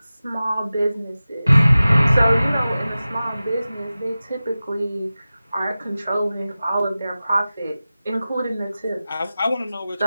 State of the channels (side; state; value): both; inverted; correlation -0.96